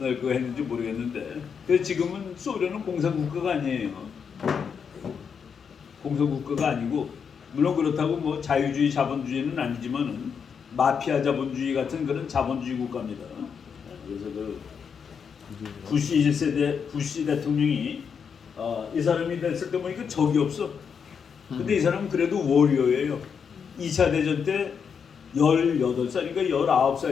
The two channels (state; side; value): quieter; right; 6.7 dB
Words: 날 그거 했는지 모르겠는데. 그래서 지금은 소련은 공산국가가 아니에요. 공산국가가 아니고 물론 그렇다고 뭐 자유주의 자본주의는 아니지만은 마피아 자본주의 같은 그런 자본주의 국가입니다. 그래서 그 부시 1세대 부시 대통령이 이 사람이 됐을 때 보니까 적이 없어. 근데 이 사람은 그래도 워리어예요. 2차 대전 때 18살인가